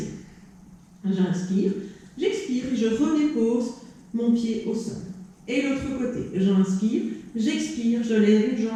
J'inspire, j'expire et je redépose mon pied au sol. Et l'autre côté, j'inspire, j'expire, je lève une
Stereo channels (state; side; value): identical; both; correlation 1.00